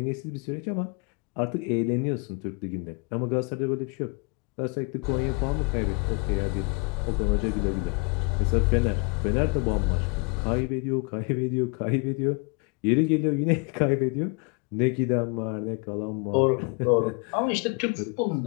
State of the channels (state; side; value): quieter; right; 31.4 dB